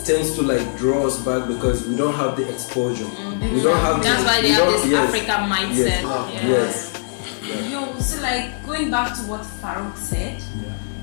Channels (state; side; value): silent; right; digital silence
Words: tends to like draw us back because we don't have the exposure. We don't have. That's why they have this African mindset. Yes. Yo, so like going back to what Farouk said,